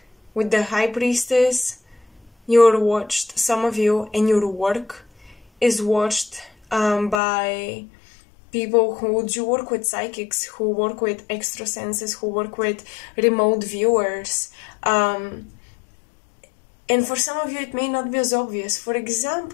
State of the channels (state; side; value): drops out; right; at 7.2 s